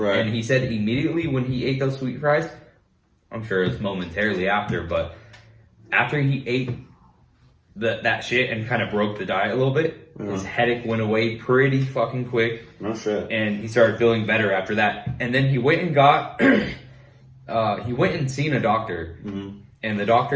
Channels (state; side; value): identical; both; correlation 1.00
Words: And he said immediately when he ate those sweet fries, I'm sure it's momentarily after, but after he ate that shit and kind of broke the diet a little bit, his headache went away pretty fucking quick. No shit. And he started feeling better after that. And then he went and got, he went and seen a doctor. And the